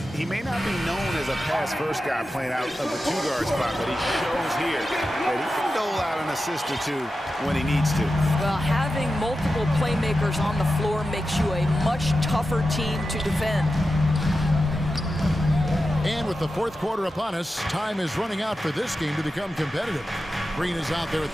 may not be known as a pass-first guy playing out of the 2-guard spot, but he shows here that he can dole out an assist or 2 when he needs to. Well, having multiple playmakers on the floor makes you a much tougher team to defend. And with the fourth quarter upon us, time is running out for this game to become competitive. Green is out there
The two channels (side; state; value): both; normal; correlation 0.91